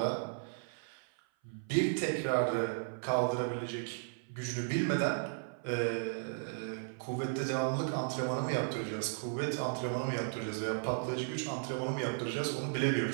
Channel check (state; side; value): silent; left; 54 dB below the other